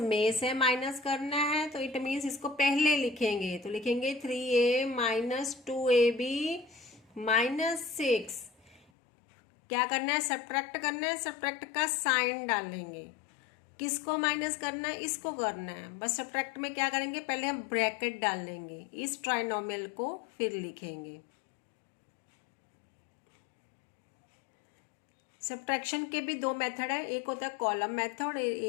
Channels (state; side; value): drops out; right; at 8.8 s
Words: से माइनस करना है, तो इट मीन्स इसको पहले लिखेंगे। तो लिखेंगे 3a - 2ab - 6। क्या करना है सब्ट्रैक्ट करना है, सब्ट्रैक्ट का साइन डालेंगे। किसको माइनस करना है, इसको करना है। बस सब्ट्रैक्ट में क्या करेंगे, पहले हम ब्रैकेट डालेंगे, इस ट्राइनोमियल को फिर लिखेंगे। सब्ट्रैक्शन के भी दो मेथड है, एक होता है कॉलम मेथड,